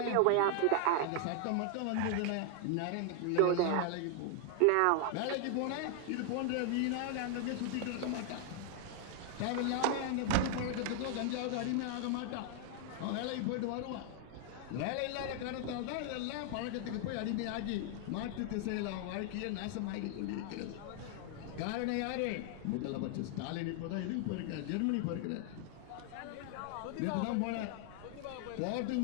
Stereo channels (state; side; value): different; both; correlation 0.00